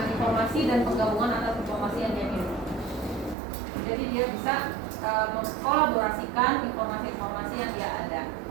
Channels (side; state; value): left; drops out; at 3.4 s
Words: informasi dan penggabungan atas informasi yang dia miliki. Jadi dia bisa mengkolaborasikan informasi-informasi yang dia ada.